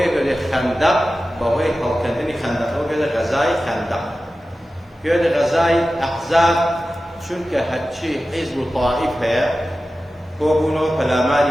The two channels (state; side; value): normal; both; correlation 0.94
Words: كده خندق بوي هالكندني خندق هو كده غزاي خندق كده غزاي أحزاب شنك هالشي حزب الطائف هي هو بونو فلاماري